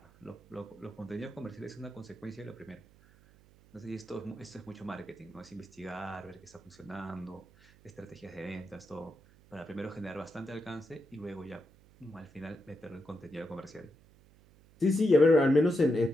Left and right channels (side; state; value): right; noise; hum, 26 dB below the sound